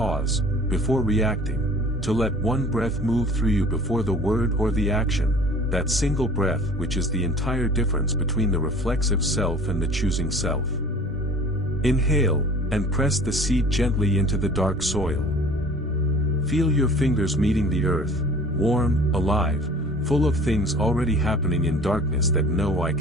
before reacting, to let one breath move through you before the word or the action, that single breath which is the entire difference between the reflexive self and the choosing self. Inhale, and press the seed gently into the dark soil. Feel your fingers meeting the earth, warm, alive, full of things already happening in darkness that no eye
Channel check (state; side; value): normal; both; correlation 0.46